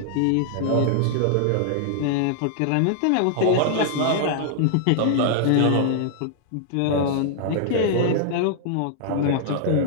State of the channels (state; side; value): different; both; correlation -0.01